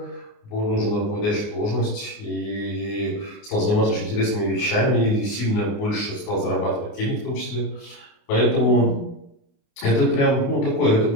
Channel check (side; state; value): right; late; 29 ms